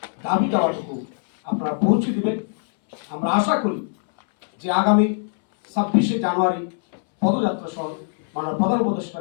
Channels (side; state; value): right; silent; 64 dB below the other